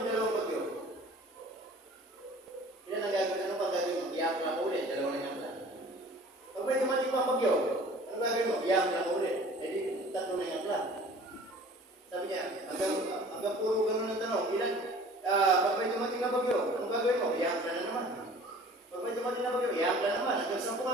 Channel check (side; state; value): both; normal; correlation 0.47